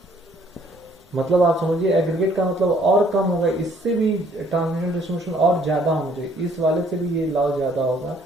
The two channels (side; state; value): both; normal; correlation 0.62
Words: मतलब आप समझिए एग्रीगेट का मतलब और कम होगा, इससे भी ट्रांसमिशन डिस्ट्रीब्यूशन और ज्यादा होना चाहिए, इस वाले से भी ये लॉस ज्यादा होगा।